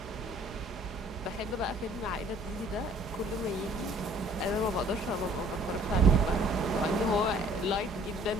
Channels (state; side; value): normal; both; correlation 0.56